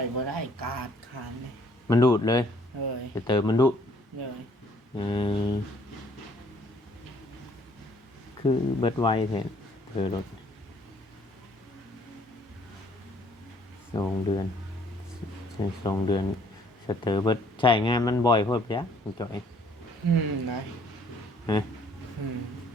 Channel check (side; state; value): both; normal; correlation 0.62